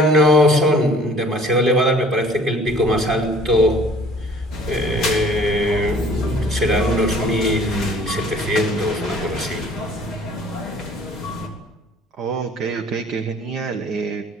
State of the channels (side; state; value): both; normal; correlation 0.53